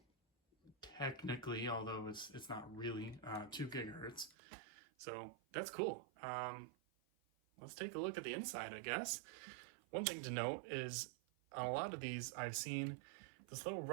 technically, although it's not really 2 gigahertz. So that's cool. Let's take a look at the inside, I guess. One thing to note is on a lot of these I've seen this little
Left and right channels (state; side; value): drops out; left; at 4.4 s